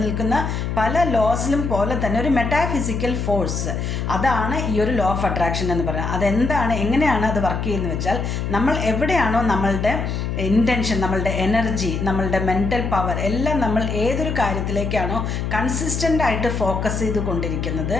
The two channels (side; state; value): left; noise; hum, 2 dB below the sound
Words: പല ലോസിലും പോലെ തന്നെ ഒരു മെറ്റാഫിസിക്കൽ ഫോഴ്സ്, അതാണ് ഈ ഒരു ലോ ഓഫ് അട്രാക്ഷൻ എന്ന് പറയുന്നത്. അതെന്താണ്, എങ്ങനെയാണ് അത് വർക്ക് ചെയ്യുന്നത് വെച്ചാൽ, നമ്മൾ എവിടെയാണോ നമ്മളുടെ ഇൻറ്റൻഷൻ, നമ്മളുടെ എനർജി, നമ്മളുടെ മെൻ്റൽ പവർ എല്ലാം നമ്മൾ ഏതൊരു കാര്യത്തിലേക്കാണോ കൺസിസ്റ്റൻ്റ് ആയിട്ട് ഫോക്കസ് ചെയ്ത് കൊണ്ടിരിക്കുന്നത്,